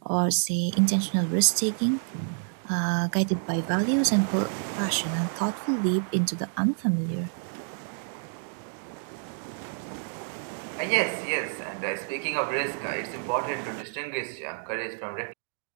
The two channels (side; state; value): left; silent; digital silence